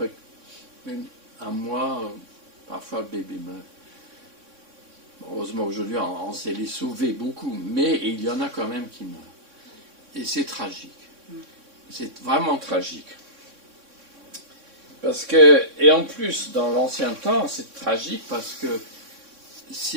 un mois, parfois le bébé meurt. Heureusement aujourd'hui on sait les sauver beaucoup, mais il y en a quand même qui meurent. Et c'est tragique. C'est vraiment tragique. Parce que, et en plus, dans l'ancien temps, c'est tragique parce que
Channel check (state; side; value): late; left; 3.6 ms